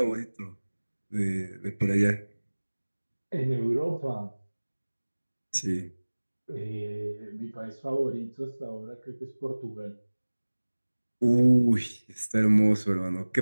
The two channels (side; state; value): both; inverted; correlation -1.00